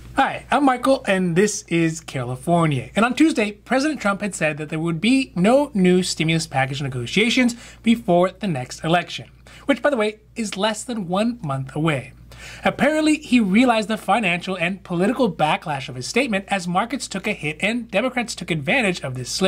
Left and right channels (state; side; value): identical; both; correlation 1.00